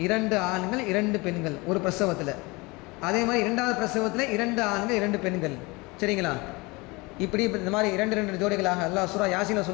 2 ஆண்கள் 2 பெண்கள் ஒரு பிரசவத்தில். அதே மாதிரி 2வது பிரசவத்தில் 2 ஆண்கள் 2 பெண்கள். சரிங்களா? இப்படி இந்த மாதிரி 2 ஜோடிகளாக அல்லாஹ் சூரா யாசீனில்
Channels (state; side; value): quieter; right; 24.9 dB